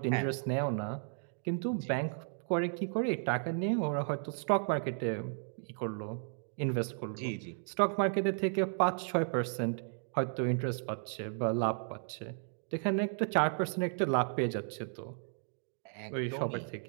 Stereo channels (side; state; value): left; silent; 55 dB below the other